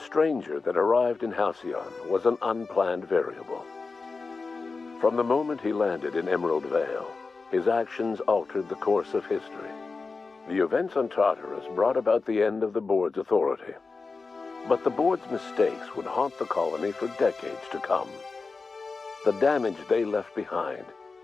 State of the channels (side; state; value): right; quieter; 4.2 dB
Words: that arrived in Halcyon was an unplanned variable. From the moment he landed in Emerald Vale, his actions altered the course of history. The events on Tartarus brought about the end of the board's authority. But the board's mistakes would haunt the colony for decades to come. The damage they left behind